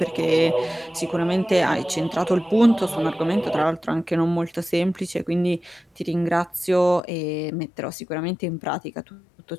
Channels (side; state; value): right; drops out; at 7.0 s